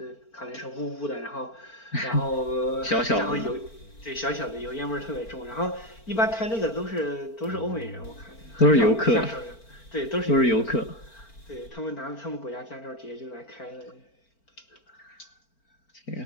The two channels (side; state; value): right; late; 4.4 ms